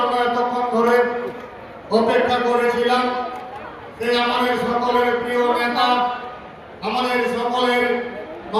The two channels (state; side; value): identical; both; correlation 1.00